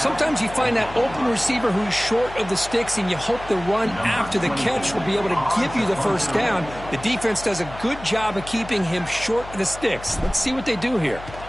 you find that open receiver who's short of the sticks, and you hope the run after the catch will be able to give you the first down. The defense does a good job of keeping him short of the sticks. Let's see what they do here.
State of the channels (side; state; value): left; noise; hum, 15 dB below the sound